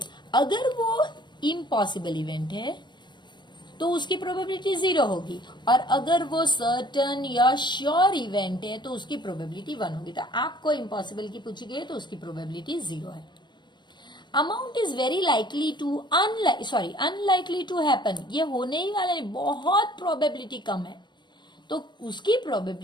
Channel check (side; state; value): right; late; 0.22 ms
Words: अगर वो इम्पॉसिबल इवेंट है तो उसकी प्रोबेबिलिटी 0 होगी, और अगर वो सर्टन या श्योर इवेंट है तो उसकी प्रोबेबिलिटी 1 होगी। तो आपको इम्पॉसिबल की पूछी गई तो उसकी प्रोबेबिलिटी 0 है। Amount is very likely to unlikely to happen, ये होने ही वाला नहीं, बहुत प्रोबेबिलिटी कम है, तो उसकी